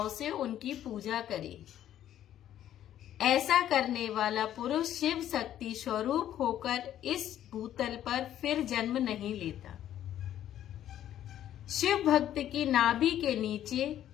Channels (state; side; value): quieter; right; 11.5 dB